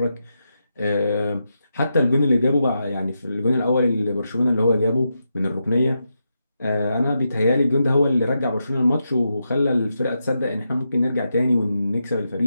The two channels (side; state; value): both; inverted; correlation -0.86